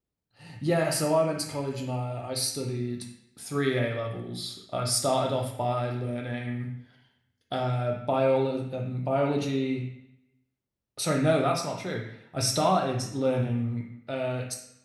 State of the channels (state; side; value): identical; both; correlation 1.00